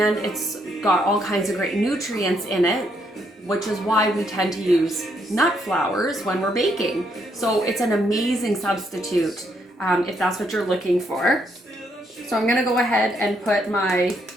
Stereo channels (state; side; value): normal; both; correlation 0.74